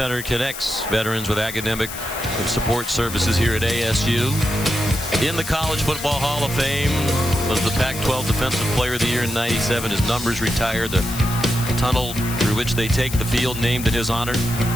connects veterans with academic and support services here at ASU. In the College Football Hall of Fame, was the Pac-12 Defensive Player of the Year in '97. His numbers retired. The tunnel through which they take the field named in his honor.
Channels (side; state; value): left; noise; hiss, 10 dB below the sound